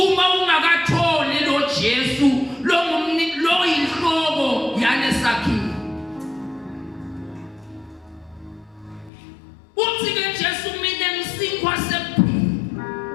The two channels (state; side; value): drops out; right; at 9.1 s